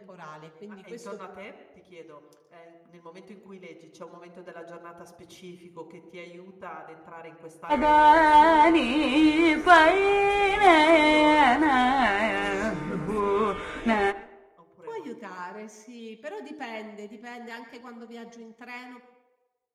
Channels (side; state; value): both; identical; correlation 1.00